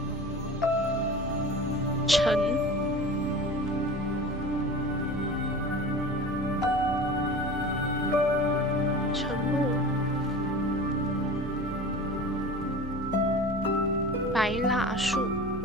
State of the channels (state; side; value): normal; both; correlation 0.36